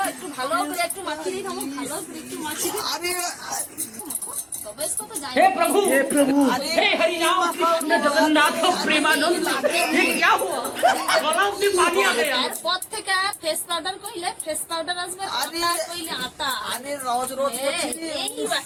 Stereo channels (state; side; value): identical; both; correlation 1.00